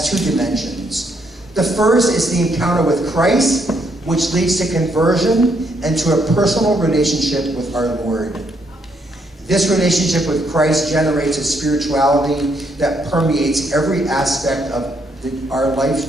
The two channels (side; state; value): both; normal; correlation 0.73